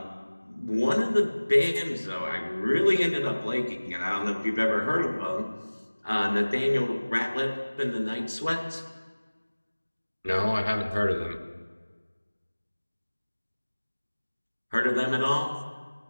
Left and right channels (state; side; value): inverted; both; correlation -1.00